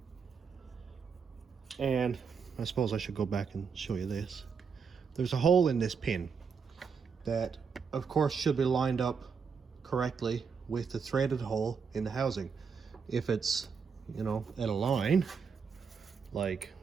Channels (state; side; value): quieter; left; 5.9 dB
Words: And I suppose I should go back and show you this. There's a hole in this pin that of course should be lined up correctly with the threaded hole in the housing. If it's, you know, at a line like